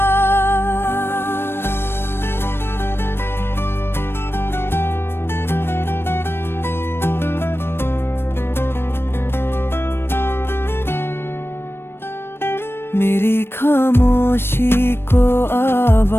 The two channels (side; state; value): right; late; 0.11 ms